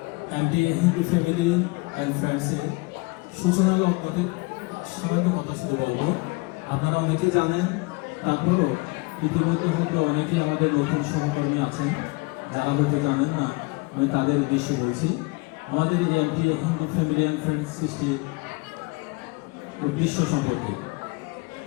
অ্যান্টি হিন্দু ফ্যামিলি অ্যান্ড ফ্রেন্ডসের সূচনার মধ্যে সামান্য কথা শুধু বলবো। আপনারা অনেকে জানেন, তারপরেও ইতিমধ্যে হয়তো অনেকেই আমাদের নতুন সহকর্মী আছেন যারা হয়তো জানেন না, আমি তাদের উদ্দেশ্যে বলছি। আমাদের এই anti Hindu family and friends সৃষ্টি উদ্দেশ্য সম্পর্কে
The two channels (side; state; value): right; quieter; 26.5 dB